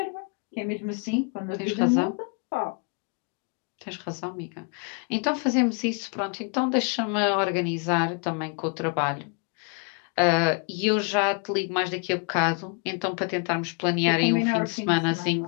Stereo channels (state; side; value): quieter; right; 36.1 dB